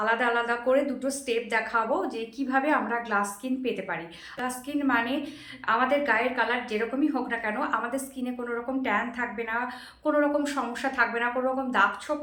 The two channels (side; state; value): both; identical; correlation 1.00